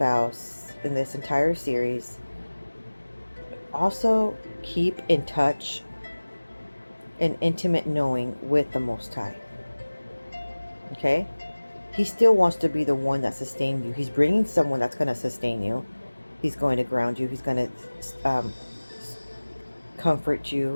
in this entire series, also keep in touch and intimate knowing with the Most High. Okay? He still wants to be the one that sustains you. He's bringing someone that's going to sustain you. He's going to ground you. He's going to comfort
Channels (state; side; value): inverted; both; correlation -1.00